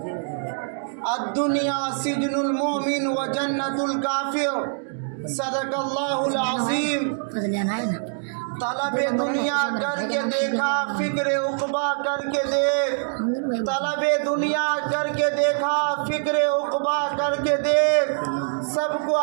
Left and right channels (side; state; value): left; silent; digital silence